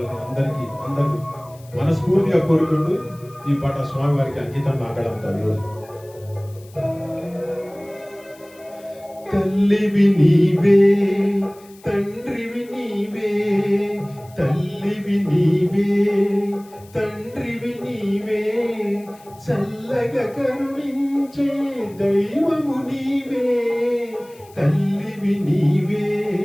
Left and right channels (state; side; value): noise; left; hiss, 26 dB below the sound